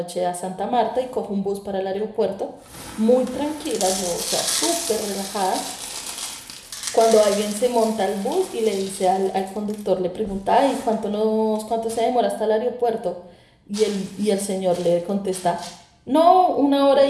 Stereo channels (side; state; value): both; identical; correlation 1.00